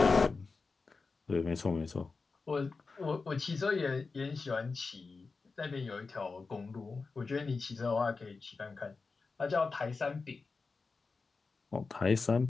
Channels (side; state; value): right; quieter; 4.3 dB